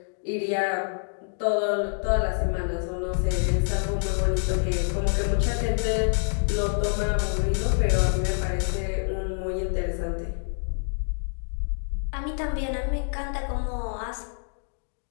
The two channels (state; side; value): silent; right; 60 dB below the other